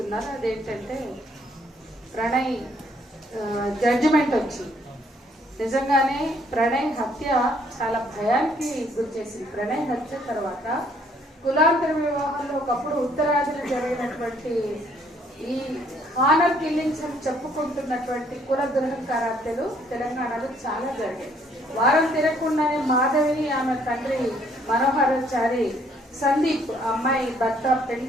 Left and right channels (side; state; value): both; normal; correlation 0.65